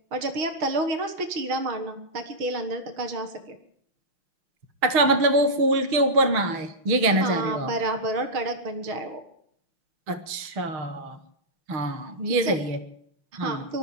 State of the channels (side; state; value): left; late; 6.4 ms